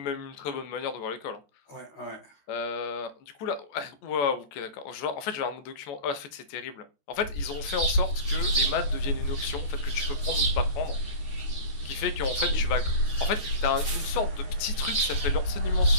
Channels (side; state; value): right; late; 14 ms